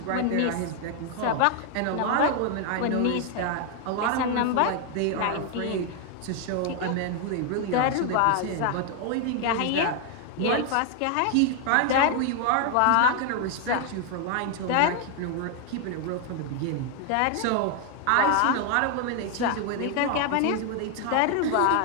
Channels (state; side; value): different; both; correlation 0.00